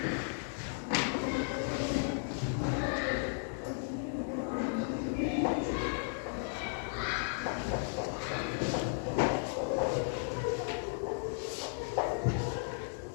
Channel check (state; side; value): silent; right; 54 dB below the other